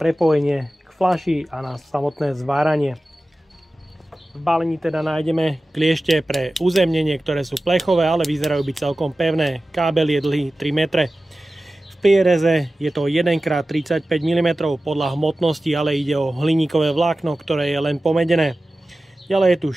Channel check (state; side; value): normal; both; correlation 0.95